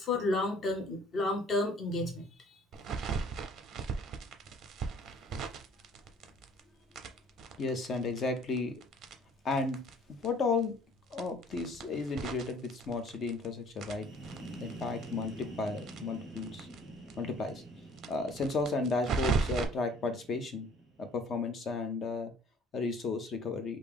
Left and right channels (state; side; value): normal; both; correlation 0.54